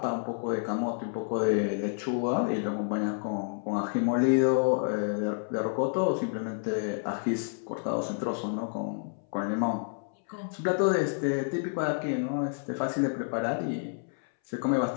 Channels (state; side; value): silent; right; 58 dB below the other